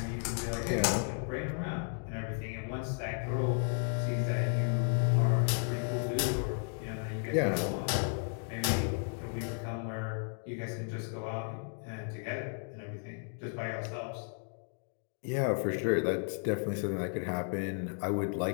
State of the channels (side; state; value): right; silent; 55 dB below the other